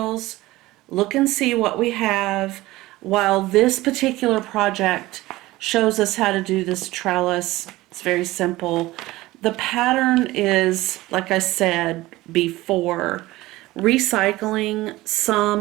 look and see what we have, while this particular project shows us how to do this trellis. It's very simple. The pattern is, like I said before, recycling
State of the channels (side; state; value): left; quieter; 18.4 dB